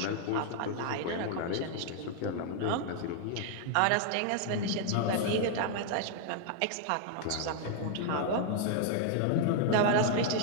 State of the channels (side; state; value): both; different; correlation 0.00